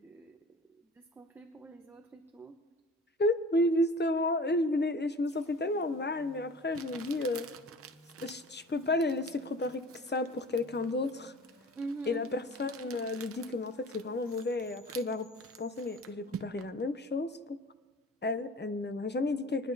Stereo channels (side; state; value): both; normal; correlation 0.43